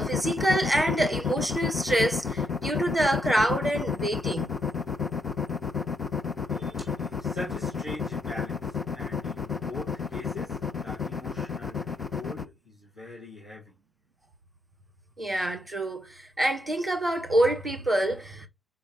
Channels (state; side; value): normal; both; correlation 0.77